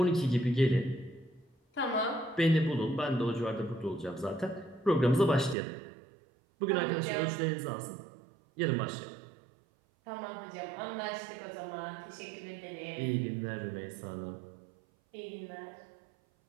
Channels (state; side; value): drops out; left; at 5.6 s